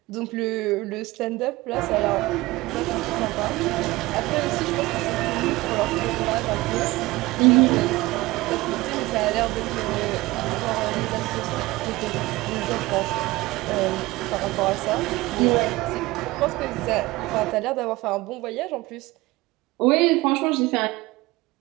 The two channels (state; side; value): quieter; left; 20.1 dB